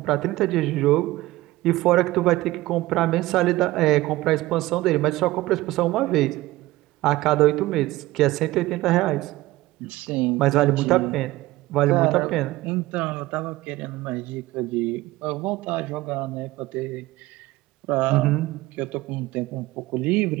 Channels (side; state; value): left; quieter; 18.1 dB